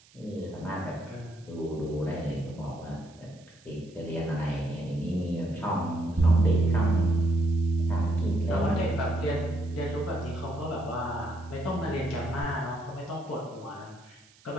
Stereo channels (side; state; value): right; noise; hiss, 28 dB below the sound